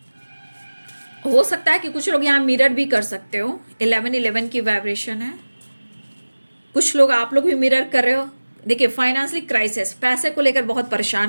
हो सकता है कि कुछ लोग यहाँ मिरर भी कर सकते हो, 1111 की वाइब्रेशन है। कुछ लोग, आप लोग भी मिरर कर रहे हो। देखिए, फाइनेंशियली क्राइसिस, पैसे को लेकर बहुत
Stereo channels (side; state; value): both; inverted; correlation -1.00